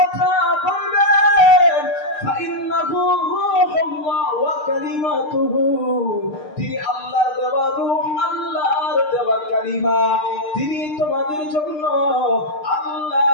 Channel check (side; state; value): right; late; 6.6 ms